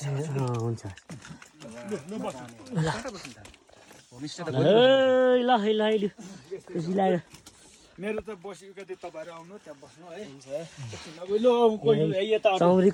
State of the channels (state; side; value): identical; both; correlation 1.00